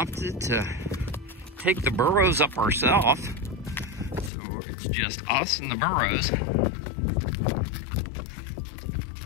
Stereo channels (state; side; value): drops out; right; at 4.3 s